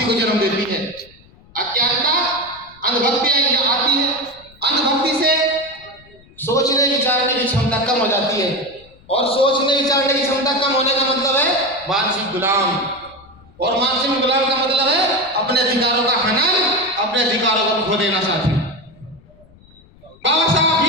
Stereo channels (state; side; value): noise; left; rumble, 27 dB below the sound